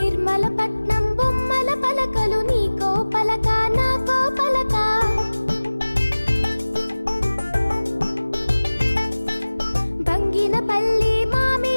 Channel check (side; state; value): both; inverted; correlation -1.00